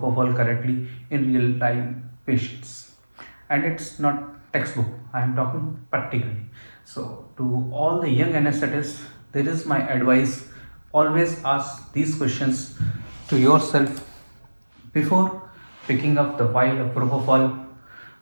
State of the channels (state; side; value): inverted; both; correlation -1.00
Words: correctly in real time patients. And it's not textbook, I am talking practically. So to all the young anesthetists, there is my advice: always ask these questions to yourself before picking up the vial of propofol